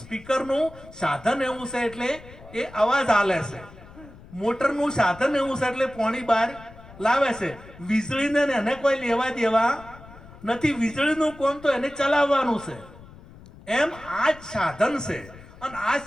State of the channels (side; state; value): left; noise; rumble, 20 dB below the sound